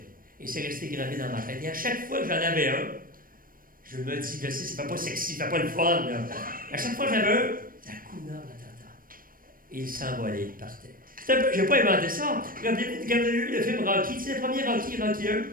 Et c'est resté gravé dans ma tête. Et à chaque fois que j'en avais un, je me dis, je sais, ça fait pas sexy, ça fait pas le fun, là. À chaque fois que j'avais un, Hakuna Matata. Et il s'envolait, il partait. J'ai pas inventé ça. Quand vous avez vu le film Rocky, c'est le premier Rocky 1. Tu sais,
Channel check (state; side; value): late; left; 0.41 ms